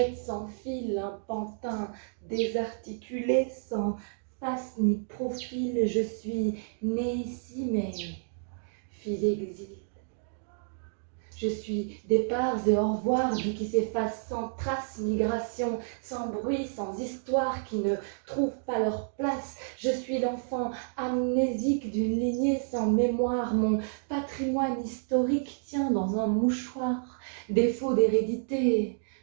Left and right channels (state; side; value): silent; left; digital silence